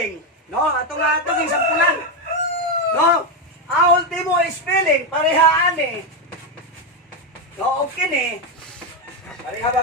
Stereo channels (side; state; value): both; normal; correlation 0.07